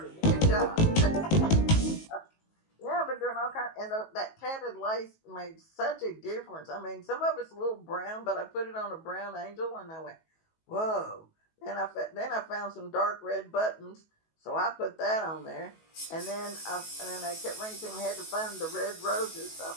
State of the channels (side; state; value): right; late; 19 ms